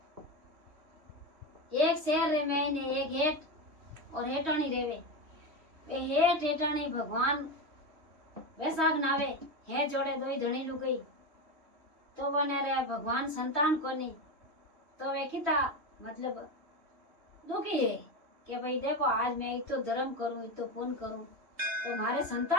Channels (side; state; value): left; late; 3.1 ms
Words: एक शहर रे महीने एक हेठ और हेठाणी रेवे। वे हेठ हेठाणी भगवान बैसाख नावे हे जोड़े दोई धणी लुगई तो बने रे भगवान संतान कोनी तो वे किता मतलब दुखी है कि भाई देखो आज मैं इतो धर्म करूं इतो पुण्य करूं तो मारे